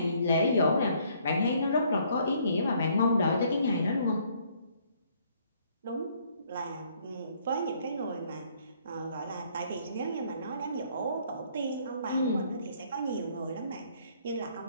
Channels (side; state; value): both; inverted; correlation -0.64